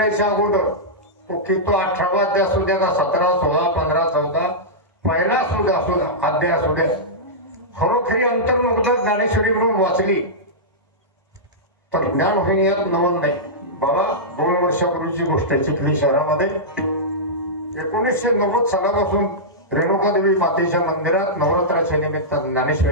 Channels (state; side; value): normal; both; correlation -0.12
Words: अगोदर की तो 18वा अध्याय असू द्या का 17, 16, 15, 14 पहिला सुद्धा असू द्या, अध्याय असू द्या, खरोखरी अंतर्मुक्त ज्ञानेश्वरी म्हणून वाचली तर ज्ञान होईन यात नवल नाही. बाबा 2 वर्षापूर्वीची गोष्ट आहे. चिखली शहरामध्ये 1990 सालापासून रेणुकादेवी मातेच्या मंदिरात नवरात्राच्या निमित्त